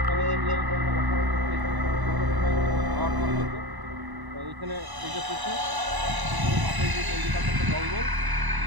ফ্যামিলি নিয়ে এখানে বসবাস করতো। এখানে সন্ধ্যার সময় খাওয়া দাওয়া হতো। তো এইখানে এই যে পুকুর, পুকুরের পাশে যে চন্ডিকার একটা জঙ্গল,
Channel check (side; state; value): left; late; 1.0 ms